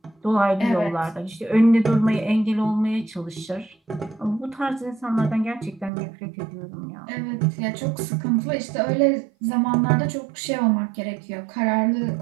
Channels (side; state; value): left; drops out; at 5.9 s